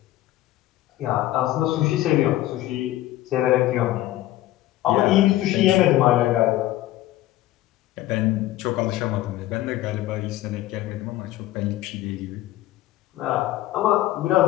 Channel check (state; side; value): quieter; right; 15.3 dB